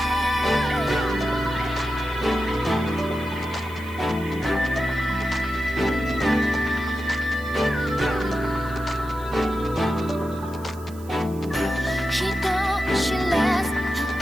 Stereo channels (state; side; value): noise; right; hiss, 22 dB below the sound